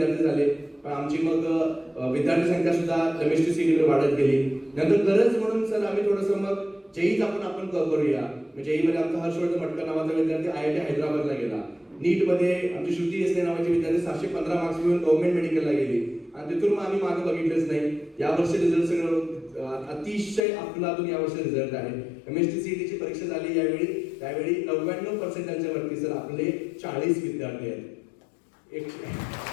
झाले. पण आमची मग विद्यार्थी संख्या सुद्धा MSTCT मध्ये वाढत गेली. नंतर गरज म्हणून सर आम्ही थोडंसं मग जेईच आपण करूया. जेई मध्ये आमचा हर्षवर्धन मटकर नावाचा विद्यार्थी IIT हैदराबादला गेला. नीट मध्ये आमची श्रुती देसले नावाची विद्यार्थी 715 मार्क्स घेऊन गव्हर्नमेंट मेडिकलला गेली आणि तिथून मग आम्ही मागे बघितलंच नाही. यावर्षी रिझल्ट सगळं अतिशय अफलातून यावर्षी रिझल्ट आहे. MSTCT ची परीक्षा झाली त्यावेळी 99% वरती सर आपले 40 विद्यार्थी आहेत.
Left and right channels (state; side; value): drops out; right; at 20.5 s